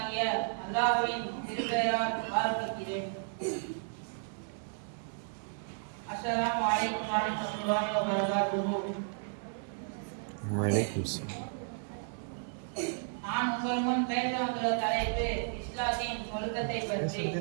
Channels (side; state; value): left; silent; digital silence